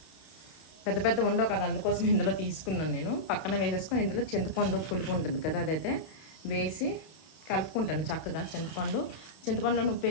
పెద్ద పెద్ద ఉండవు కదా, అందుకోసం ఇందులో తీసుకున్నాను నేను. పక్కన వేసేసుకొని ఇందులో చింతపండు పులుపు ఉంటుంది కదా, అదైతే వేసి కలుపుకుంటాను చక్కగా. చింతపండులో ఉప్పు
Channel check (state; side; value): late; right; 31 ms